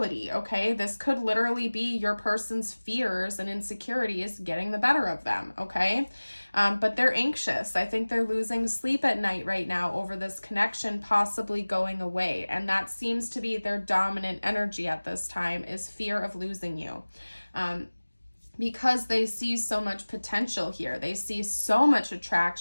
okay? This could literally be your person's fears and insecurities getting the better of them, okay? But they're anxious. I think they're losing sleep at night right now over this connection possibly going away. And that seems to be their dominant energy at this time, is fear of losing you. Because they see so much potential here. They see so much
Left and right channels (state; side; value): inverted; both; correlation -1.00